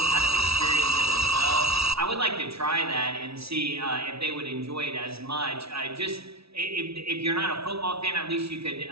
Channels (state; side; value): late; left; 0.77 ms